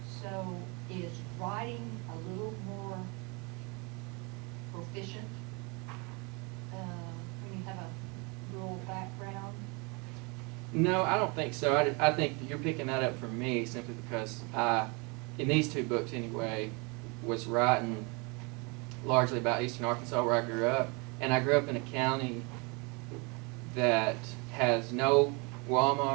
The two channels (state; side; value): quieter; left; 30.2 dB